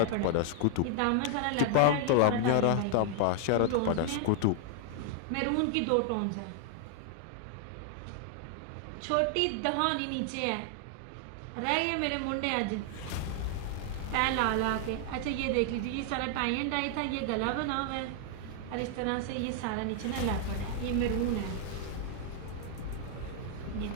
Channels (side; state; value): both; different; correlation 0.00